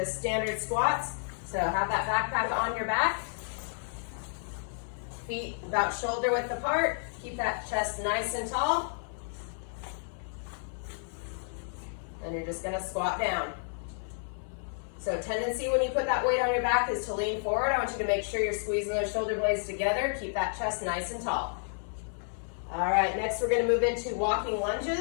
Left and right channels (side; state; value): right; silent; 56 dB below the other